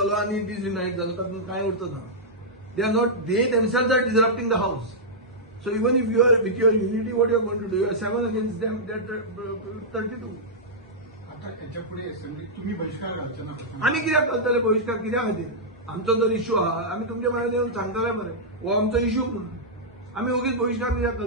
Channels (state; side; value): normal; both; correlation -0.10